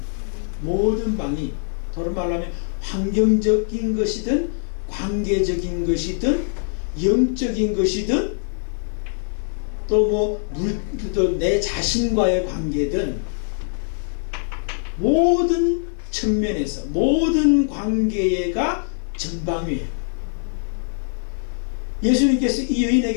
모든 방위, 다른 말로 하면 환경적인 것이든 관계적인 것이든 영적인 것이든 또 내 자신과의 관계든 모든 측면에서 모든 관계가 전방위예요. 예수님께서 이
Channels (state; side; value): silent; right; 64 dB below the other